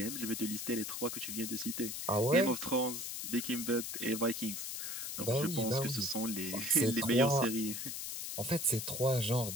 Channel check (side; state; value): left; noise; hiss, 5 dB below the sound